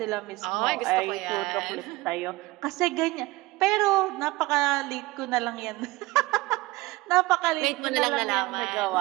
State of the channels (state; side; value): quieter; left; 20.8 dB